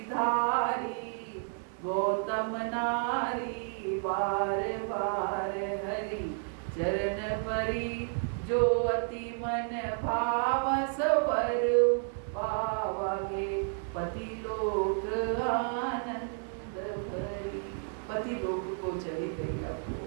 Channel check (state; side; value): silent; left; 57 dB below the other